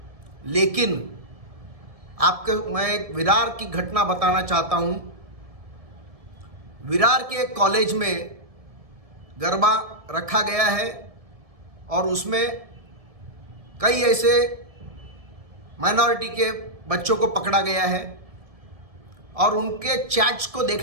लेकिन आपको मैं एक विरार की घटना बताना चाहता हूँ। विरार के एक कॉलेज में गरबा रखा गया है और उसमें कई ऐसे माइनॉरिटी के बच्चों को पकड़ा गया है और उनके चैट्स को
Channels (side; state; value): left; late; 1.7 ms